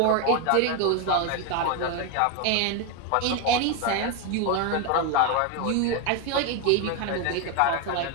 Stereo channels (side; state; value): both; different; correlation 0.02